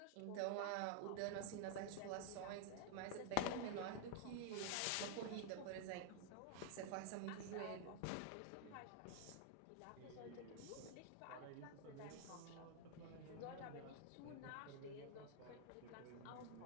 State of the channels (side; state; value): both; different; correlation 0.00